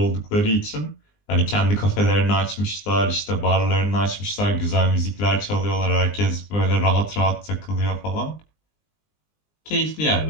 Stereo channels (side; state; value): right; late; 20 ms